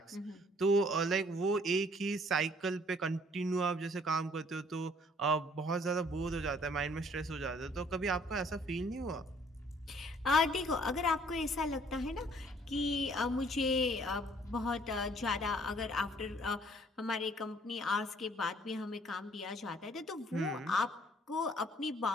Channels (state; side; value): normal; both; correlation 0.60